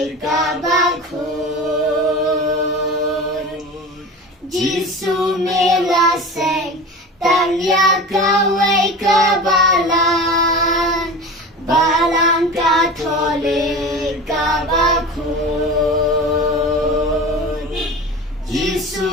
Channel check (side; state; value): both; normal; correlation 0.32